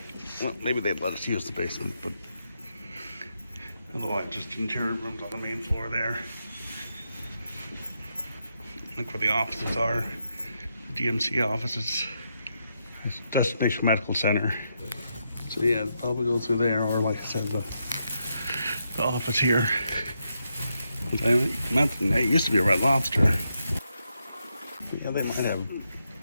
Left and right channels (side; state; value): both; inverted; correlation -0.82